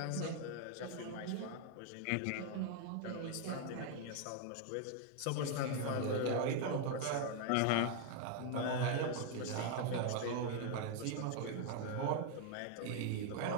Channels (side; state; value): both; different; correlation 0.01